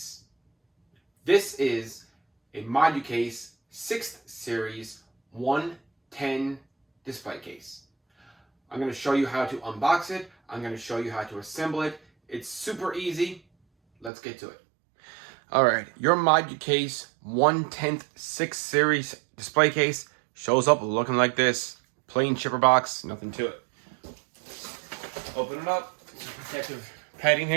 This is a moducase 6th series 110 display case. I'm going to show you how to unbox it. I'm going to show you how to assemble it. It's super easy. Let's get to it. Alright, your moducase 1/10 6th series display case shows up looking like this. Plain shipper box, nothing to it. Open it up, protective padding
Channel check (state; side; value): drops out; left; at 14.1 s